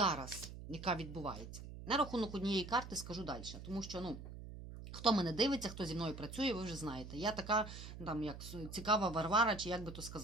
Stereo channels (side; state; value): right; noise; hum, 11 dB below the sound